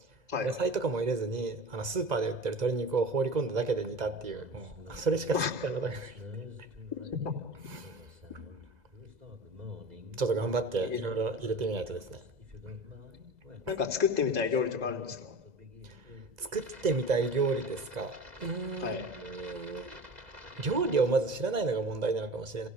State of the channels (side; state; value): left; late; 2.0 ms